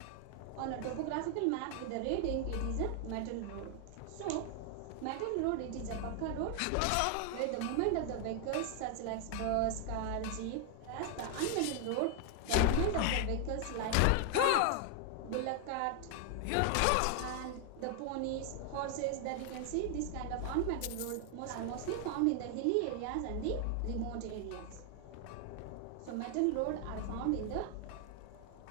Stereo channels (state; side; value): different; both; correlation 0.00